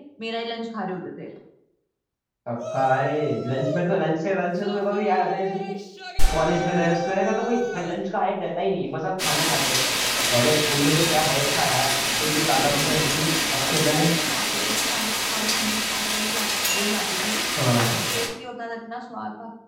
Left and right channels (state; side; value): identical; both; correlation 1.00